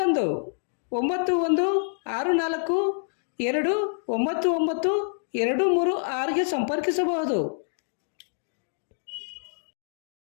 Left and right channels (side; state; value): right; silent; digital silence